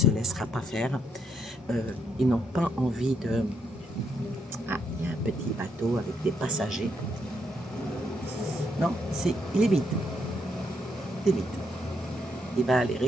laissera pas faire. Ils n'ont pas envie de... Ah, il y a un petit bateau avec des passagers. Non, il est vide. Il est vide. Il va aller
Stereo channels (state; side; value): normal; both; correlation 0.76